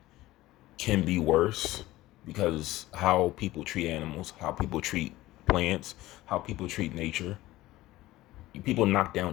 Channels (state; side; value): quieter; right; 17.1 dB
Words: can be worse because how people treat animals, how people treat plants, how people treat nature. People knock down